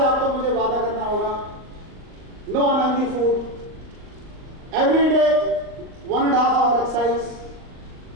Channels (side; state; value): left; late; 38 ms